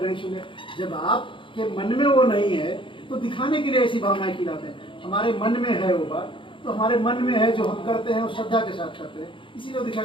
नहीं छूने। जब आपके मन में वो नहीं है तो दिखाने के लिए ऐसी भावनाएं खिलाते हैं। हमारे मन में है वो बात, तो हमारे मन में है, जो हम करते हैं वो श्रद्धा के साथ करते हैं, इसीलिए वो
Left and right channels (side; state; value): right; late; 0.25 ms